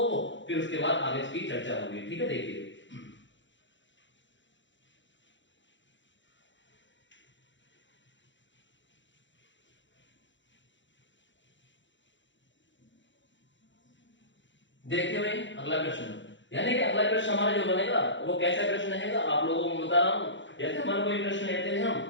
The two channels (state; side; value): late; right; 0.54 ms